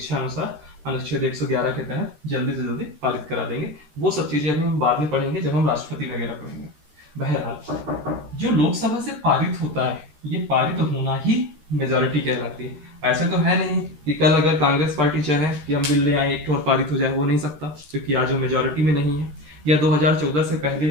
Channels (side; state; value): left; late; 13 ms